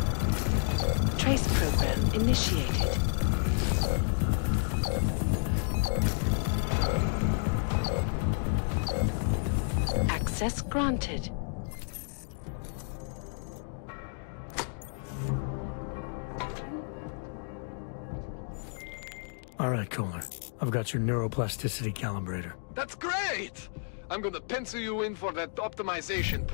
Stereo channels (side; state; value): right; silent; 57 dB below the other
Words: Trace program initiated. Access granted. All right, Kohler. I've got your neuroplasticity calibrator. That's great! I'm gonna pencil you in for that optimization